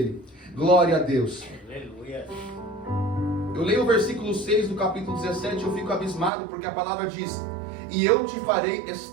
Glória a Deus. Aleluia. Eu leio o versículo 6 do capítulo 17, eu fico abismado, porque a palavra diz: e eu te farei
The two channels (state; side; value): drops out; left; at 6.3 s